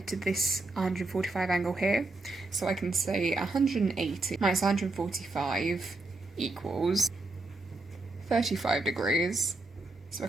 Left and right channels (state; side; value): quieter; left; 3.1 dB